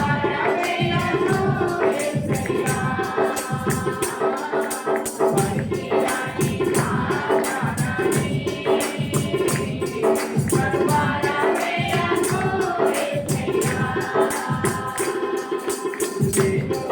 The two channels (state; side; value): identical; both; correlation 1.00